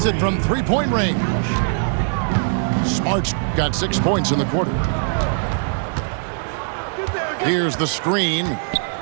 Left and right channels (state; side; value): silent; left; digital silence